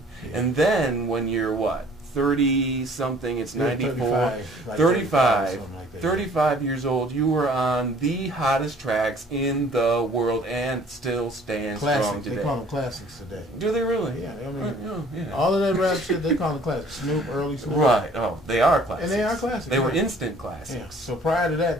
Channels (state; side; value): normal; both; correlation 0.54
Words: Yeah. And then when you're what? 30-something, it's 94. 35 years old, you were on the hottest tracks in the world and still stand strong today. They call them classics today. Do they really? Yeah. I mean, all of that rap shit, they call them classics. Snoop, early Snoop. Right. Oh, they are classics. And they are classics. They were instant classics. Yeah. So prior to